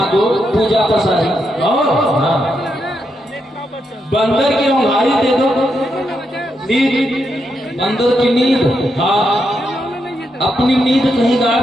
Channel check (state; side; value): normal; both; correlation 0.82